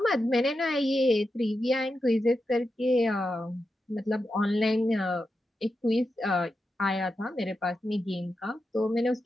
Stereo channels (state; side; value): normal; both; correlation 0.89